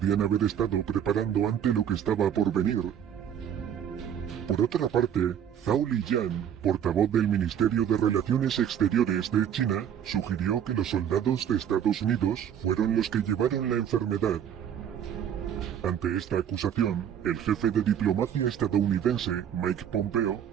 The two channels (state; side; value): quieter; left; 9.2 dB